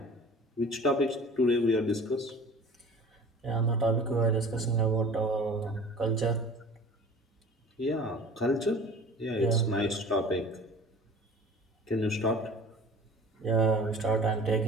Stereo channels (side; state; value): both; normal; correlation 0.43